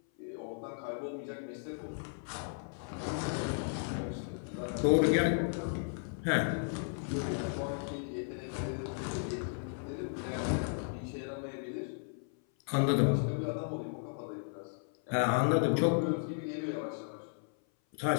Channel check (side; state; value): right; silent; 55 dB below the other